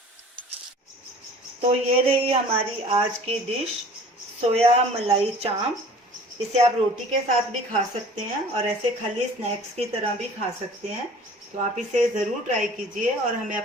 तो ये रही हमारी आज की डिश, सोया मलाई चांप। इसे आप रोटी के साथ भी खा सकते हैं और ऐसे खाली स्नैक्स की तरह भी खा सकते हैं। तो आप इसे ज़रूर ट्राई कीजिए और हमें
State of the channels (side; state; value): both; normal; correlation 0.47